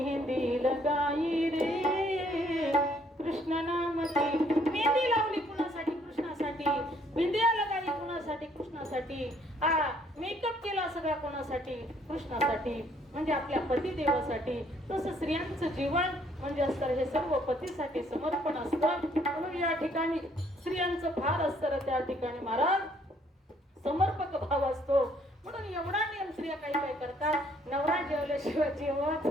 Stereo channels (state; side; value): normal; both; correlation 0.65